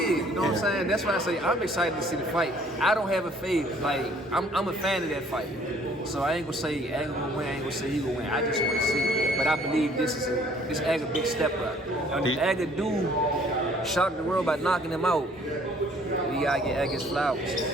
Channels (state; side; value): normal; both; correlation 0.58